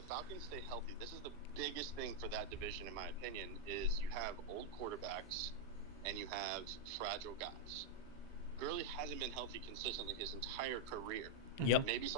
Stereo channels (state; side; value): noise; left; hum, 24 dB below the sound